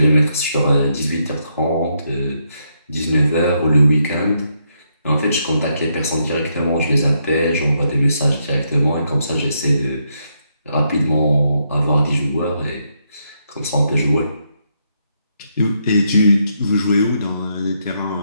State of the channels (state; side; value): inverted; both; correlation -0.78